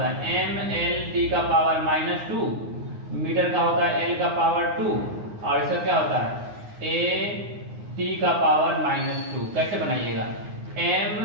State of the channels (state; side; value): late; left; 9.6 ms